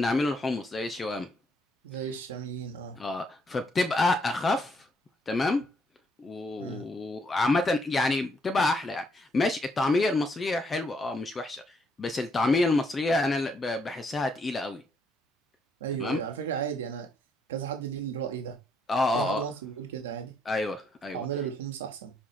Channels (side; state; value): both; normal; correlation 0.73